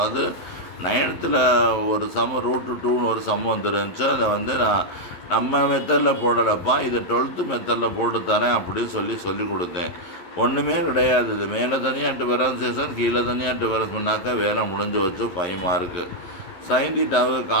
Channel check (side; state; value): right; late; 11 ms